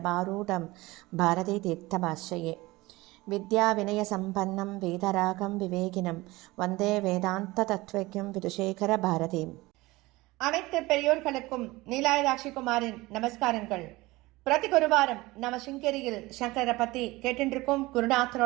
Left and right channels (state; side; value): quieter; left; 20.7 dB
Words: பாரதி தீர்த்தமாஸ்ரயே. வித்யா வினய சம்பன்னம் வேதராகம் விவேகினம் வந்தே வேதாந்த தத்வக்யம் விதுஷேகர பாரதீம். அனைத்து பெரியோர்களுக்கும் நீலாயதாட்சி குமாரின் நமஸ்காரங்கள். பிரதி குருவாரம் நம்ம சிங்கேரியில் சங்கரை பத்தி கேட்டிருக்கும்